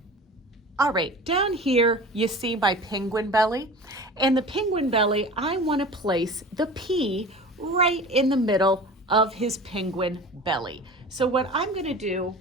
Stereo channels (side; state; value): both; normal; correlation 0.37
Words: All right, down here you see my penguin belly, and the penguin belly, I want to place the P right in the middle of his penguin belly. So what I'm going to do